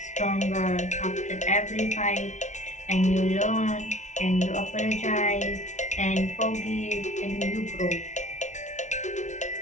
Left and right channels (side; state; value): right; late; 0.35 ms